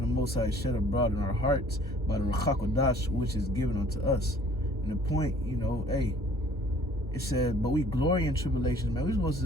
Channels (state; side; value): normal; both; correlation 0.54